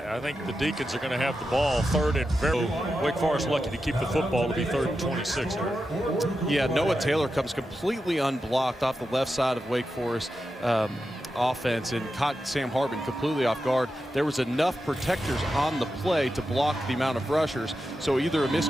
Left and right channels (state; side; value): normal; both; correlation 0.89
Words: think the Deacons are going to have the ball 3rd and very. Wake Forest lucky to keep the football to be 3rd and 26 here. Yeah, Noah Taylor comes completely unblocked off the left side of Wake Forest offense and caught Sam Hartman completely off guard. There was enough protectors on the play to block the amount of rushers, so either a